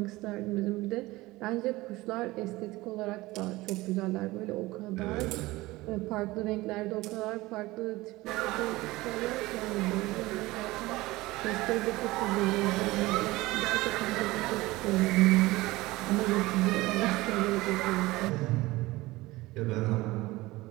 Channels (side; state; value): left; quieter; 19.8 dB